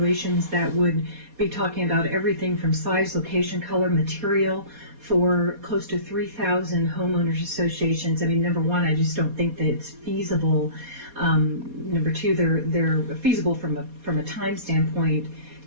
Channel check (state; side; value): late; left; 4.2 ms